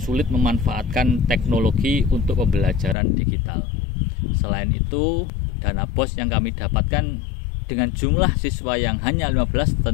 memanfaatkan teknologi untuk pembelajaran digital. Selain itu, dana BOS yang kami dapatkan dengan jumlah siswa yang hanya 15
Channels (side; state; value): right; drops out; at 3.0 s